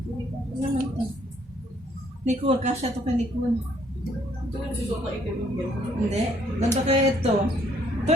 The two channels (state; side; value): normal; both; correlation 0.66